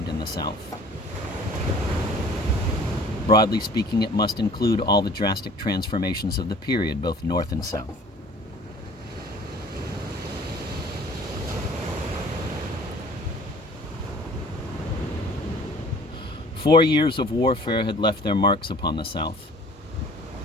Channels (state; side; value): normal; both; correlation 0.49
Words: in the South. Broadly speaking, it must include all the drastic transformations of the period, both North and South. Four years of warfare had left their marks upon the South.